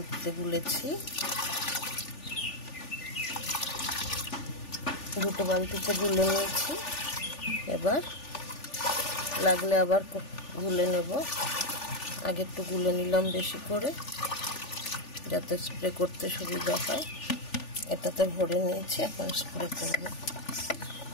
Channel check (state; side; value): late; right; 3.4 ms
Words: গুলেছি, দুটো বালতিতে গুলে নিয়েছি। এবার লাগলে আবার গুলে নেব। আগে একটু গুলে নিলাম বেশি করে যাতে স্প্রে করতে সুবিধা হয়। এটাতে ভরে নিয়েছি, এখন স্প্রে করব।